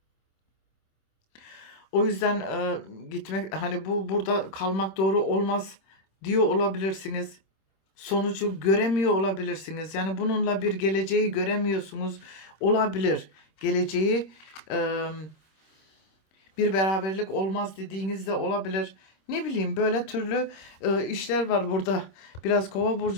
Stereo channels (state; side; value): late; right; 26 ms